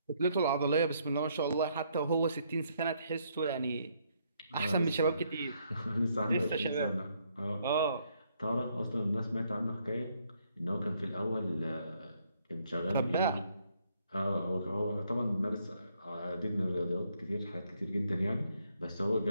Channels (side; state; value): both; inverted; correlation -0.71